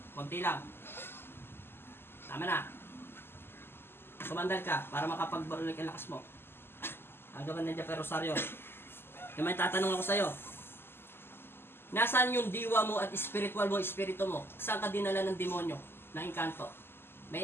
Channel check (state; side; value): late; right; 0.11 ms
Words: Konti lang. Tama na. Sumandal ka para makapagbarulik ang lakas mo. Ang gaban nandiyan pero Rosario. Yung may tatanong ako sa'yo. Nasaan yung diwa mo at spiritual mo, espiritu mo? Saan ka dinala ng demonyo? Ng inkanto?